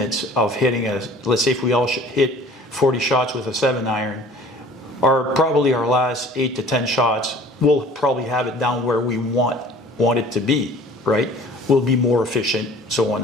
of hitting let's say if we all hit 40 shots with a 7-iron, probably our last 8 to 10 shots, we'll probably have it down where we want it to be, right? We'll be more efficient, so on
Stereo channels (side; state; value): both; normal; correlation 0.48